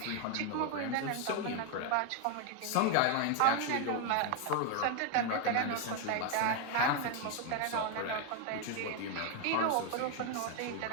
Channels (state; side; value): different; both; correlation 0.01